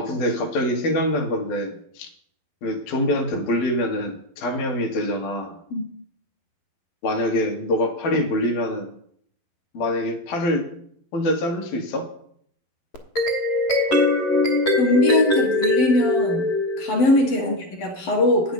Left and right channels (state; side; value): late; right; 11 ms